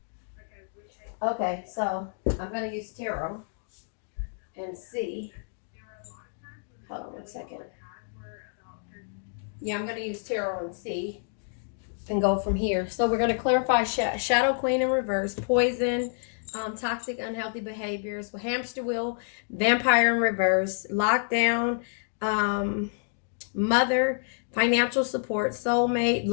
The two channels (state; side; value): silent; right; digital silence